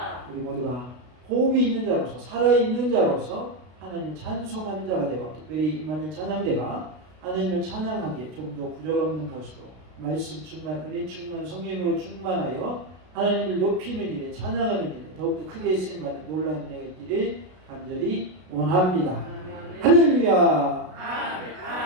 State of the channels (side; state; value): left; late; 33 ms